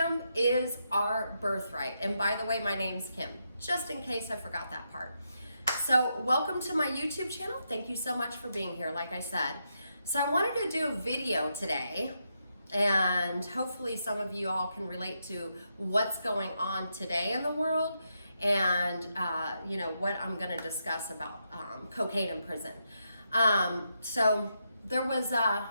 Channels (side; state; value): both; inverted; correlation -0.82